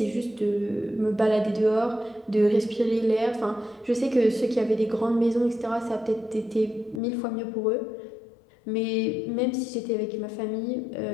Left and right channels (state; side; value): drops out; right; at 7.0 s